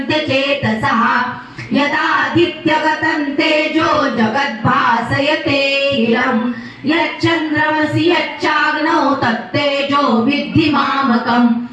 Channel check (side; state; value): both; identical; correlation 1.00